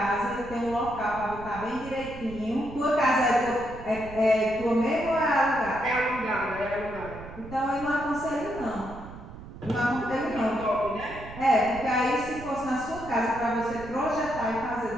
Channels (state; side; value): noise; right; rumble, 14 dB below the sound